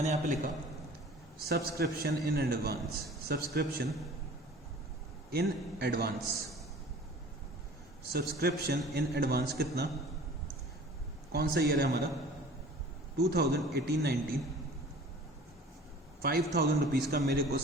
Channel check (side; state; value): both; normal; correlation 0.45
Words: यहाँ पे लिखा सब्सक्रिप्शन इन एडवांस कितना, कौन सा ईयर है हमारा, 2018-19, 5,000 रुपीज़ का मेरे को